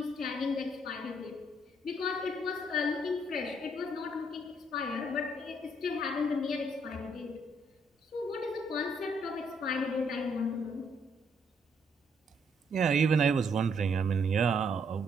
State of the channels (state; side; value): normal; both; correlation 0.70